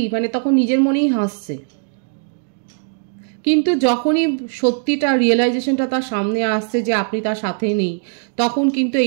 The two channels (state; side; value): silent; left; 66 dB below the other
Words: মানে তখন নিজের মনেই হাসছে। কিন্তু যখনই সত্যিটা রিয়েলাইজেশনটা তার সামনে আসছে যে আপনি তার সাথে নেই, তখন কিন্তু